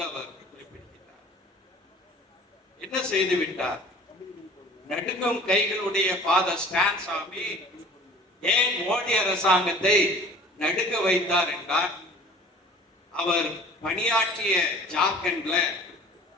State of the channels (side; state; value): both; normal; correlation 0.46